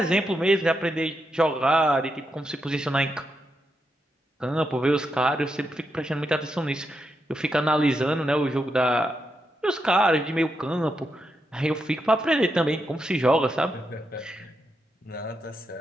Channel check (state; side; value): normal; both; correlation 0.84